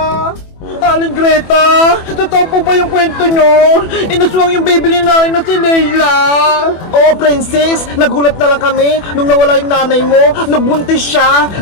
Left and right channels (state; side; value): late; right; 24 ms